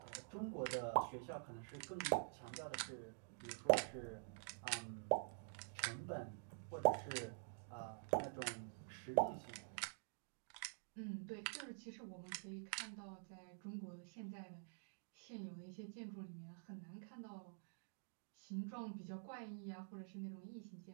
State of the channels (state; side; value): silent; left; digital silence